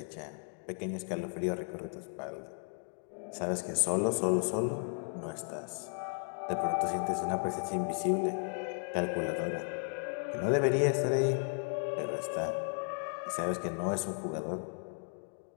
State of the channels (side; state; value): right; silent; 55 dB below the other